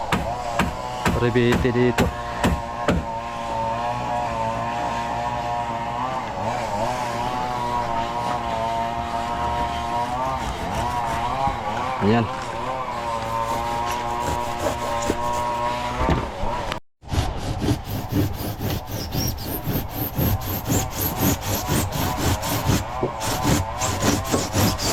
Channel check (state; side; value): identical; both; correlation 1.00